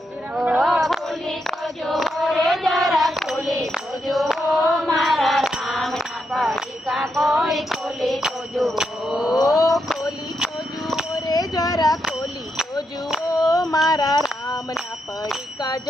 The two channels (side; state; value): both; normal; correlation 0.82